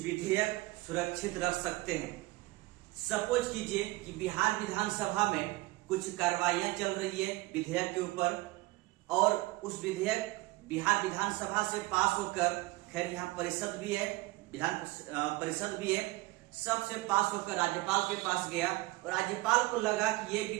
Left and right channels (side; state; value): left; quieter; 20.7 dB